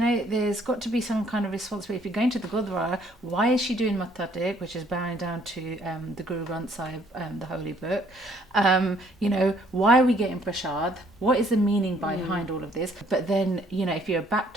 there's got to be some kind of responsibility. If you're going to the Gurdwara, why is she doing Matha Tek, which is bowing down to the Guru Granth Sahib, the holy book? You know, why are we getting prasad? What is the meaning behind all of this? But then, you know, if you're a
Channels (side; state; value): both; normal; correlation 0.63